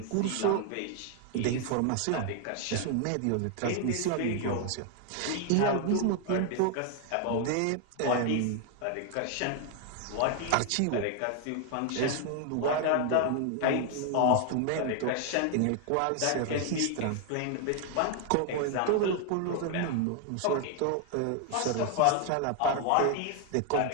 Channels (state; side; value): different; both; correlation 0.00